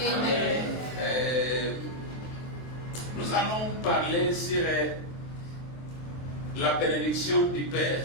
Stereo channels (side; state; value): right; late; 23 ms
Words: Nous allons parler sur la bénédiction du Père.